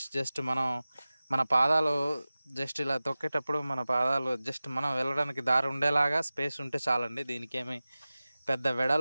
జస్ట్ మన పాదాలు జస్ట్ ఇలా తొక్కేటప్పుడు మన పాదాలు జస్ట్ మనం వెళ్ళడానికి దారి ఉండేలాగా స్పేస్ ఉంటే చాలండి. దీనికి ఏమి పెద్ద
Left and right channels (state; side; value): inverted; both; correlation -0.97